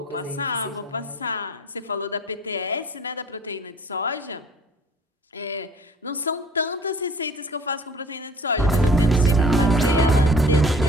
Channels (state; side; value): normal; both; correlation 0.50